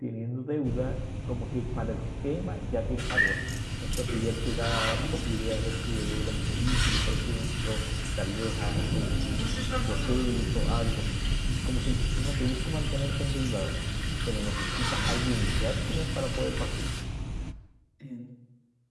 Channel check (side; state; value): both; identical; correlation 1.00